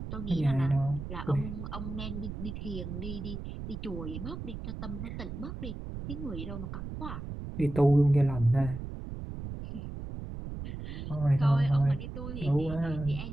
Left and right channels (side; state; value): right; noise; rumble, 7 dB below the sound